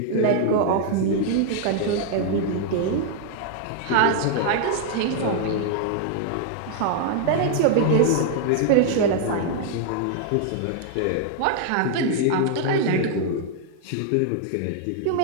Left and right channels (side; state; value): both; different; correlation 0.00